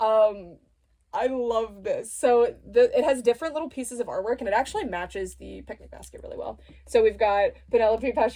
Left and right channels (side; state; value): both; identical; correlation 1.00